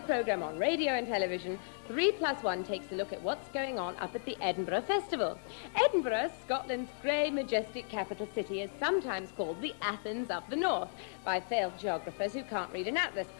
programme on radio and television, 3+1 takes a look at what's going on up at the Edinburgh Festival. Edinburgh, Scotland's grey, majestic capital city, is sometimes called the Athens of the North by failed geographers who can't read an atlas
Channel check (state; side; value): silent; right; digital silence